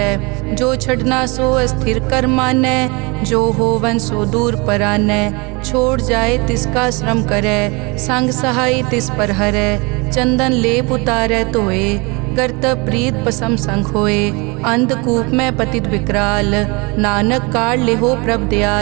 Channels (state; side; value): quieter; left; 28.1 dB